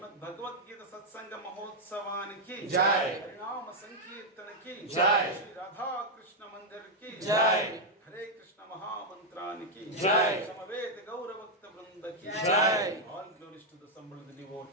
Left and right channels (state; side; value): normal; both; correlation -0.01